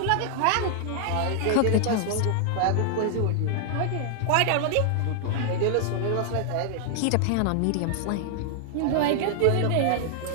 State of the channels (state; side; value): different; both; correlation 0.00